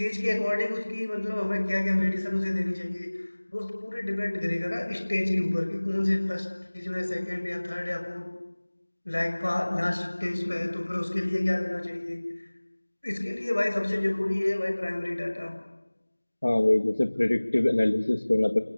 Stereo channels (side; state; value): both; inverted; correlation -1.00